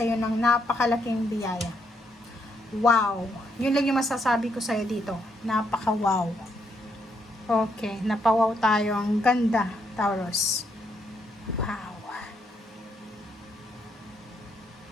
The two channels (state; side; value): normal; both; correlation 0.75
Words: ng napakalaking biyaya. Wow! Yun lang yung masasabi ko sa'yo dito. Napaka-wow. Okay, napawaw tayo. Ang ganda, Taurus. Wow.